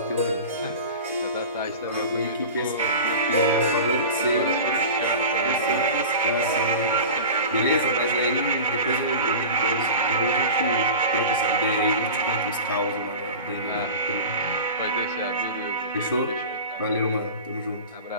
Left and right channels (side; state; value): both; inverted; correlation -0.33